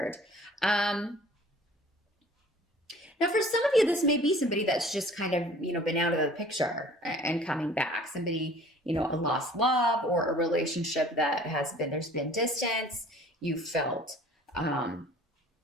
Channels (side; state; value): both; normal; correlation 0.49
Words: Now, for some of you, this may be somebody that's just kind of, been out of the picture and coming back. Somebody, a lost love or a relationship that there's been distance. You felt,